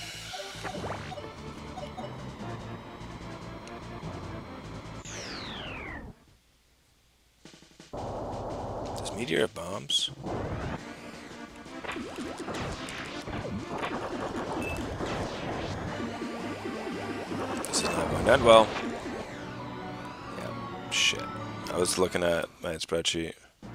Does Meteor of bombs? This is not going to end well. Yeah, shit. I was looking at my spreadsheet.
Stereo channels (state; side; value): identical; both; correlation 1.00